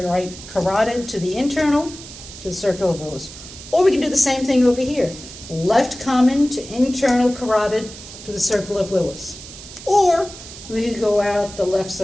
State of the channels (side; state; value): right; noise; hiss, 15 dB below the sound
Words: carotid to the internal, to the circle of Willis. Or we can do the same thing over here. Left common to internal carotid to the circle of Willis. Or we could go out the left